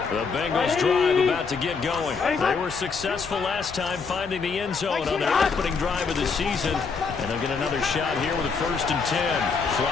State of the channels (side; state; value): right; quieter; 5.2 dB